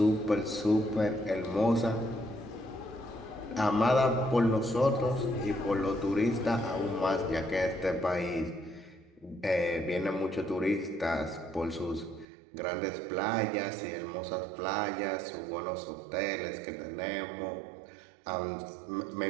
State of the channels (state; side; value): drops out; left; at 12.2 s